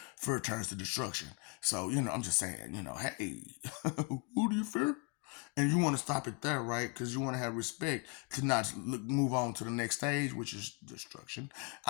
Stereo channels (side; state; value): right; quieter; 31.0 dB